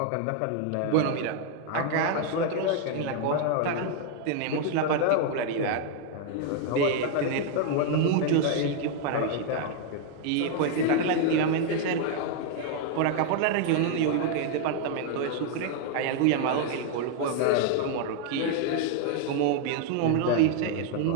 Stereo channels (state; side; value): different; both; correlation 0.00